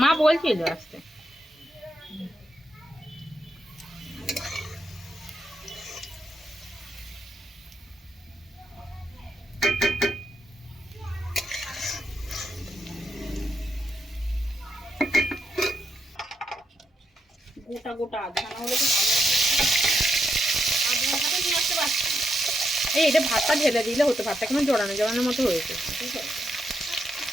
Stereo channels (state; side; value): normal; both; correlation 0.81